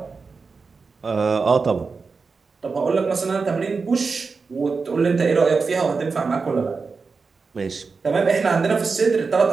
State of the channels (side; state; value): left; quieter; 4.6 dB